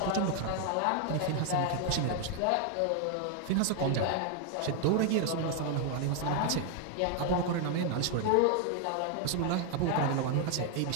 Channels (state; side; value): different; both; correlation 0.01